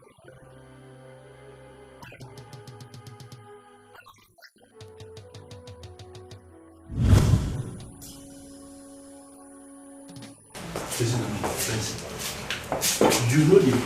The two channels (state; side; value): identical; both; correlation 1.00